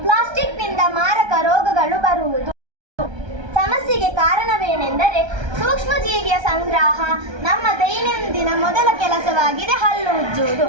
ಪ್ಲಾಸ್ಟಿಕ್ನಿಂದ ಮಾರಕ ರೋಗಗಳು ಬರುವುದು. ಸಮಸ್ಯೆಗೆ ಕಾರಣವೇನೆಂದರೆ ಸೂಕ್ಷ್ಮಜೀವಿಯ ಸಂಗ್ರಹ. ನಮ್ಮ ದೈನಂದಿನ ಮೊದಲ ಕೆಲಸವಾಗಿದೆ ಹಲ್ಲು ಉಜ್ಜುವುದು.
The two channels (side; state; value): left; late; 1.3 ms